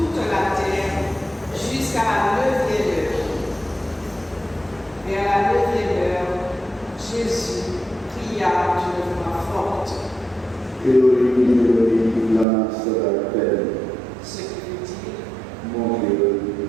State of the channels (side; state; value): left; drops out; at 12.5 s